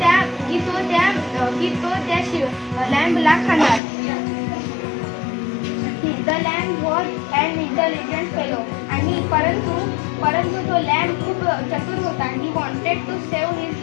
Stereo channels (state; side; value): drops out; right; at 3.8 s